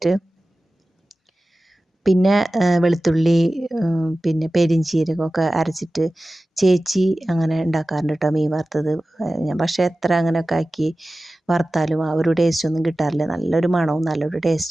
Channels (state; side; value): normal; both; correlation 0.96